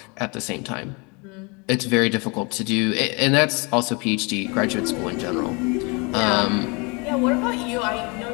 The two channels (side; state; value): right; quieter; 29.8 dB